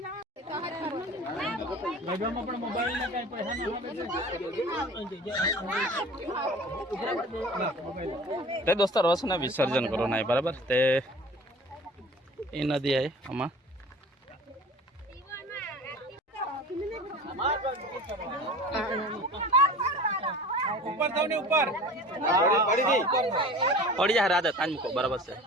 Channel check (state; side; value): normal; both; correlation 0.41